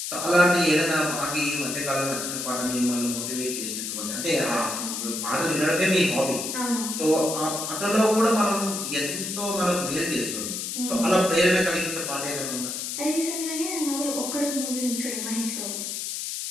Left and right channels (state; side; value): noise; left; hiss, 4 dB below the sound